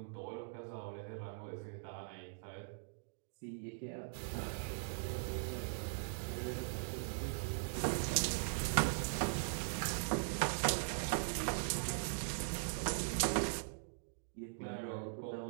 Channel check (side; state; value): left; silent; digital silence